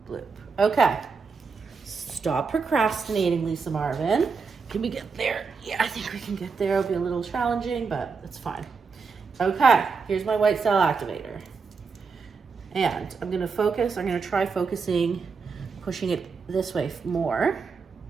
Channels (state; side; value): quieter; left; 5.1 dB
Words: bloop. Okay. Stop procrastinating, Lisa Marvin. Can we get there? Yeah, I think we can get there. It'll be a little challenging, but it's fine. Okay, here's my white cell activator. And I'm gonna focus, I'm gonna try focusing, pushing it this way more.